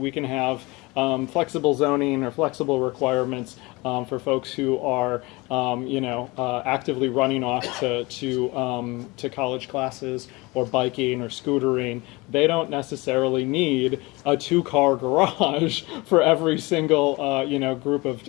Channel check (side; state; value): right; quieter; 23.9 dB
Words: can have flexible zoning or flexible requirements for folks who are, actively running off to college classes or biking or scootering. They don't necessarily need a 2-car garage for every single, group of,